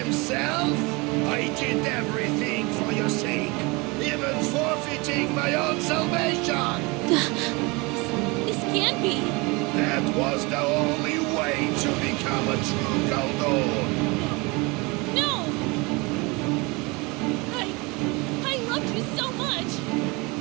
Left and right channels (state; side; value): quieter; left; 26.5 dB